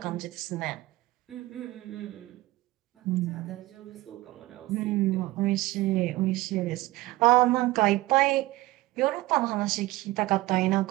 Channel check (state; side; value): quieter; left; 18.8 dB